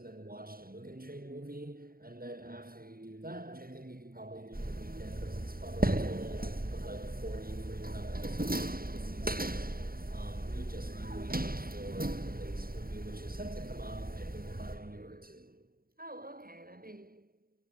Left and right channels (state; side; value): late; left; 0.43 ms